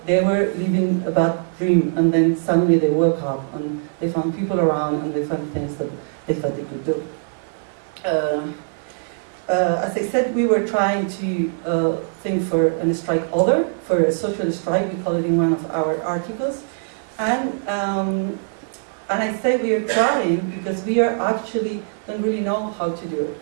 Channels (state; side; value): silent; left; digital silence